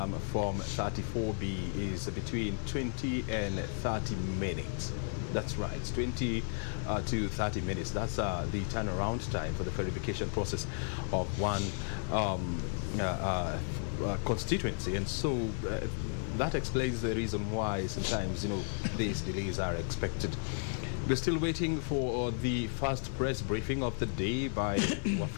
Form 34B is between 20 and 30 minutes. That's right, it's 20 to 30 minutes. That's the turnaround time for the verification process of one constituency. And so that explains the reason why sometimes, these delays are expected. We're still waiting for the first press briefing of the day by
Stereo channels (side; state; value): right; silent; digital silence